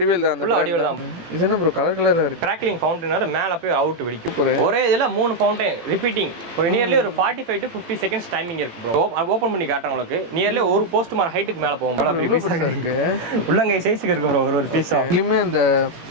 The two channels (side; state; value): left; late; 18 ms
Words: தான். ஃபுல்லா வடிவேல் தான். இது என்ன ப்ரோ கலர் கலரா இருக்கு? கிராக்லிங் ஃபவுண்டைனர் மேல போய் அவுட் வெடிக்கும். ஒரே இதுல 3 ஃபவுண்டைன் ரிப்பீட்டிங். ஒரு நியர்லி ஒரு 45 to 50 செகண்ட்ஸ் டைமிங் இருக்கு ப்ரோ. ஓபன் பண்ணி காட்டுறேன் உங்களுக்கு. நியர்லி ஒரு போஸ்ட் மார் ஹைட்டுக்கு மேல போகும். இருக்கு உள்ளங்கை சைஸ்க்கு இருக்கு ப்ரோ ஒரு பீஸ். இதுலயுமே அந்த